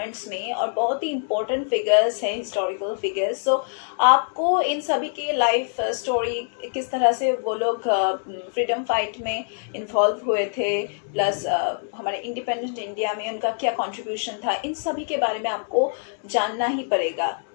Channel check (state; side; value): silent; right; digital silence